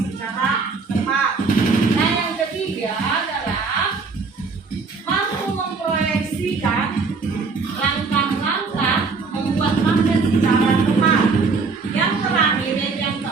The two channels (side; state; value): left; quieter; 4.5 dB